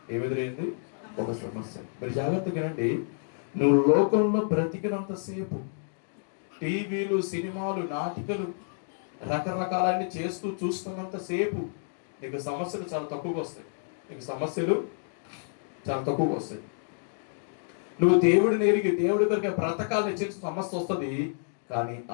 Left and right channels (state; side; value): silent; right; digital silence